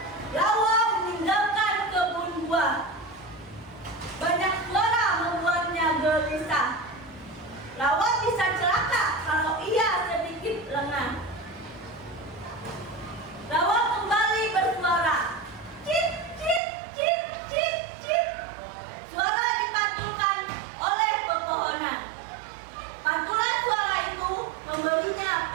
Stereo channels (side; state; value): left; drops out; at 16.6 s